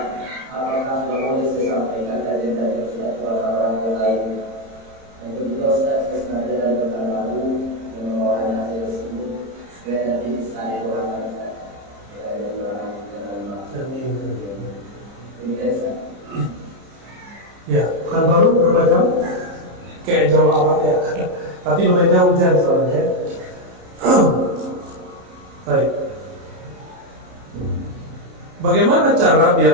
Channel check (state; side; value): late; left; 30 ms